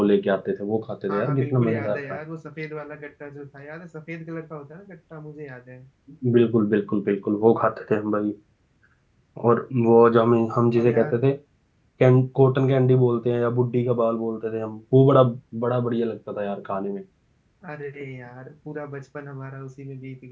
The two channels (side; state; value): both; identical; correlation 1.00